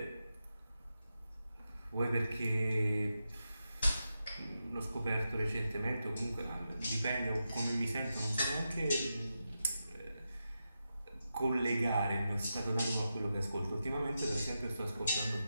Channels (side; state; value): both; inverted; correlation -0.89